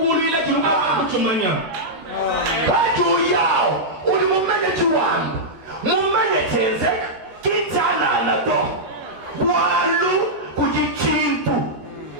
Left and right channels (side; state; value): left; late; 13 ms